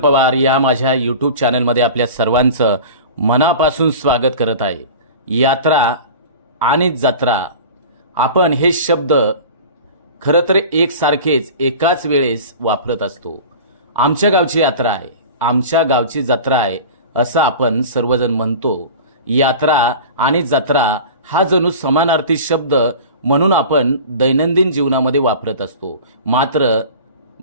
या माझ्या यूट्यूब चॅनलमध्ये आपल्या सर्वांचं मनापासून स्वागत करत आहे. यात्रा आणि जत्रा आपण हे शब्द खरं तर एकसारखेच एकाच वेळेस वापरत असतो. आमच्या गावची यात्रा आहे, आमच्या गावची जत्रा आहे असं आपण सर्वजण म्हणतो. यात्रा आणि जत्रा हा जणू समानार्थी शब्द म्हणून आपण दैनंदिन जीवनामध्ये वापरत असतो. मात्र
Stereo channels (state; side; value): inverted; both; correlation -0.36